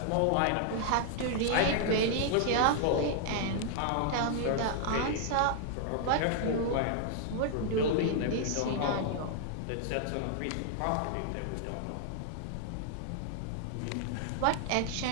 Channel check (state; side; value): different; both; correlation 0.00